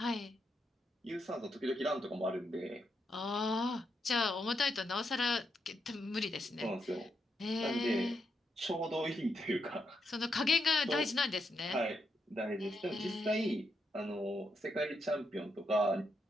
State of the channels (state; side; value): normal; both; correlation 0.81